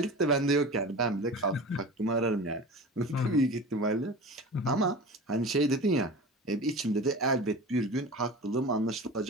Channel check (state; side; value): normal; both; correlation 0.34